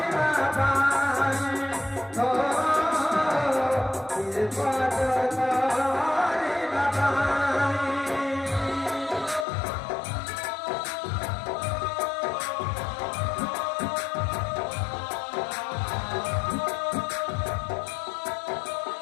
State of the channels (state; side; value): drops out; right; at 9.5 s